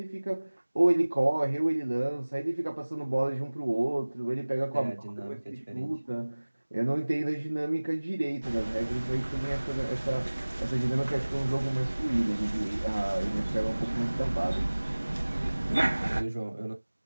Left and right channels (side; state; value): both; inverted; correlation -1.00